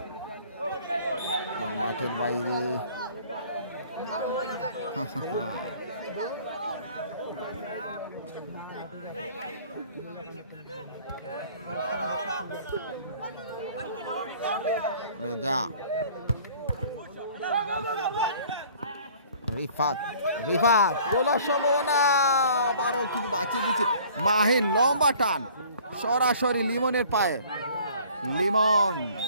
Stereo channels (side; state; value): both; inverted; correlation -0.52